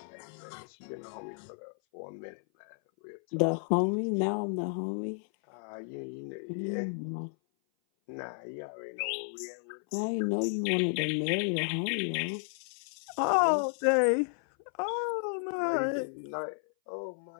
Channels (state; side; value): silent; right; 56 dB below the other